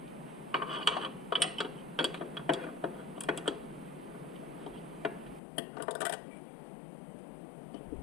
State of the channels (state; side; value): drops out; right; at 5.4 s